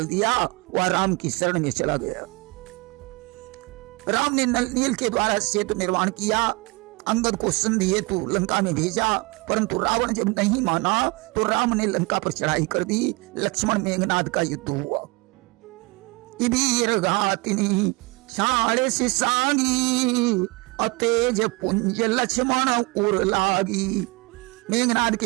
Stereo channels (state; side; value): quieter; left; 25.2 dB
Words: दिया। वह राम की शरण में चला गया। राम ने नल नील के द्वारा सेतु निर्माण किया। अंगद को संधि हेतु लंका में भेजा, परंतु रावण जब नहीं माना तो राम ने लंका पर चढ़ाई कर दी। लक्ष्मण मेघनाद का युद्ध हुआ। इबीर घातिनी छाड़े से सांगी अतेज पुंज लक्ष्मण उर लागी। मेघनाद